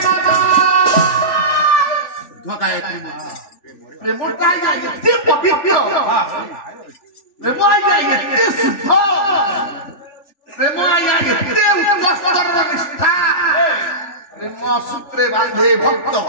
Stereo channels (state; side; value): late; right; 3.4 ms